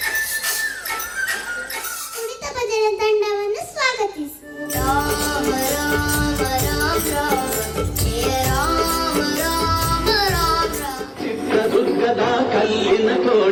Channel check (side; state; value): both; identical; correlation 1.00